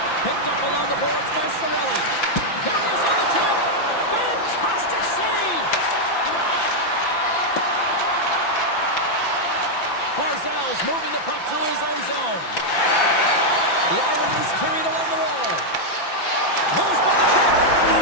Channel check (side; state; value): right; late; 5.9 ms